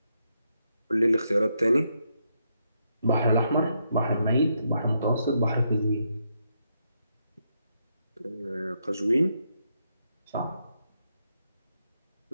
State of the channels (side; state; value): both; inverted; correlation -0.79